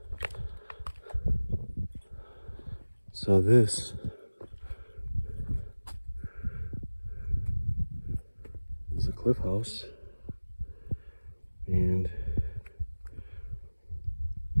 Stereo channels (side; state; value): both; inverted; correlation -1.00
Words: So this is a cliff house, and